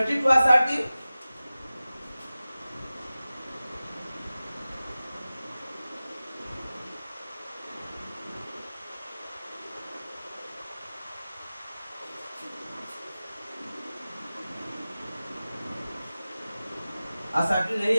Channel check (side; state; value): both; inverted; correlation -0.96